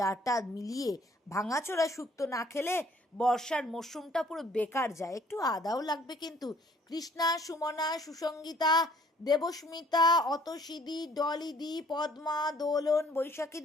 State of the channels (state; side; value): normal; both; correlation 0.60